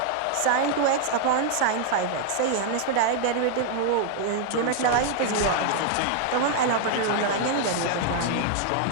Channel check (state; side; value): different; both; correlation 0.00